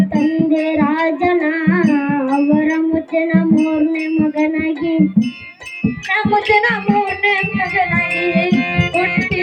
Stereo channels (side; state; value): both; identical; correlation 1.00